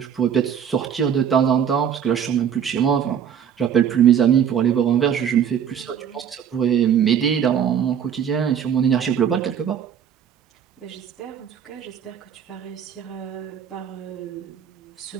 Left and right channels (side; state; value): left; quieter; 8.5 dB